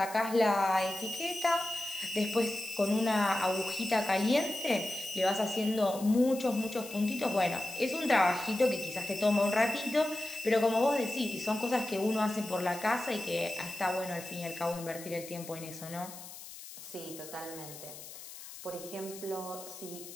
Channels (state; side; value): noise; left; hiss, 14 dB below the sound